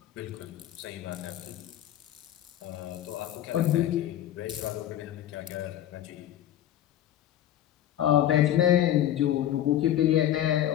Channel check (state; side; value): quieter; right; 11.8 dB